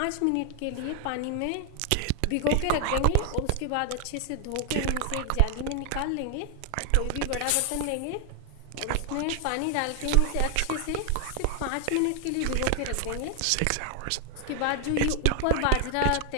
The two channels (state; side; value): different; both; correlation 0.00